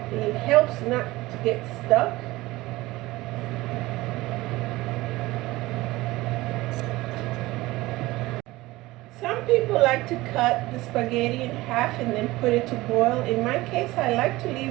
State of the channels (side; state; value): left; quieter; 19.3 dB